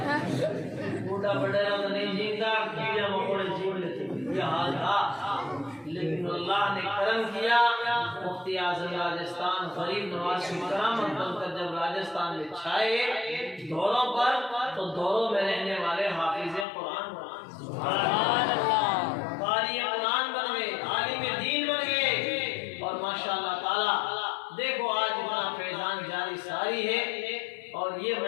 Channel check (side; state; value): right; drops out; at 16.7 s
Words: بوڑھا بڑیرا تو نہیں جینتا، کیڑے مکوڑے جین لیتے، یہ حال تھا۔ لیکن اللہ نے کرم کیا، مفتی اعظم راجستھان غریب نواز کی کرامت بن کر جب راجستھان میں چھائے دوروں پر، تو دوروں میں رہنے والے حافظ قرآن سبحان اللہ، قاری قرآن بن گئے، عالم دین بن گئے، اور ماشاءاللہ تعالی دیکھو آج اتنا فیضان جاری ساری ہے۔ اور یہ